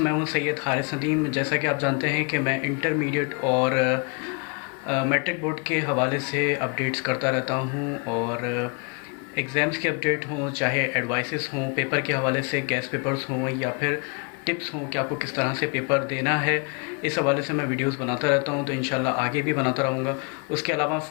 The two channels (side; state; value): right; quieter; 34.8 dB